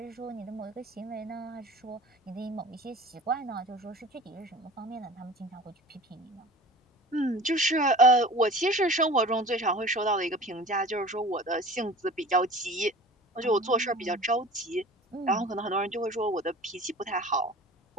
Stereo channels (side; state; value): both; normal; correlation 0.41